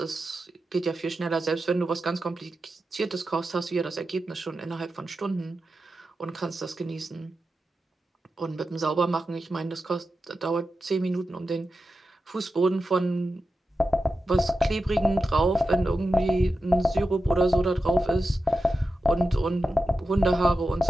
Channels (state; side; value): normal; both; correlation 0.91